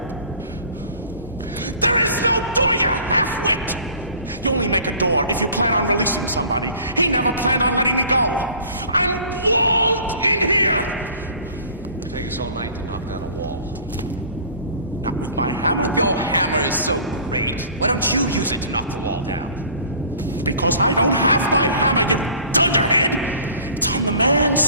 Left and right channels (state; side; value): inverted; both; correlation -0.47